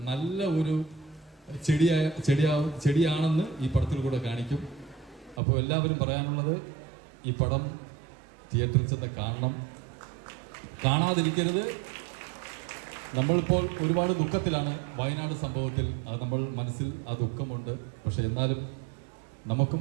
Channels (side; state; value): left; drops out; at 5.4 s